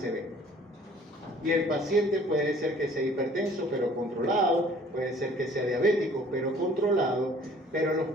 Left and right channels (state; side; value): normal; both; correlation 0.53